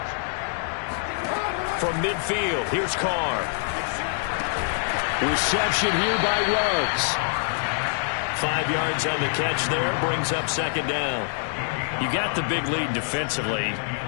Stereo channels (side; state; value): right; silent; 62 dB below the other